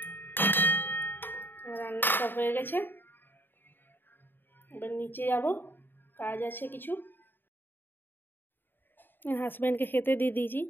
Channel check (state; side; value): late; right; 0.095 ms